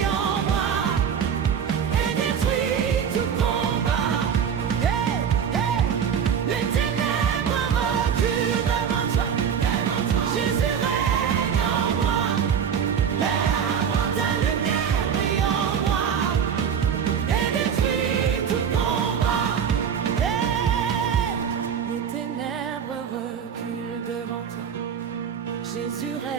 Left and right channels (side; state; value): left; quieter; 7.7 dB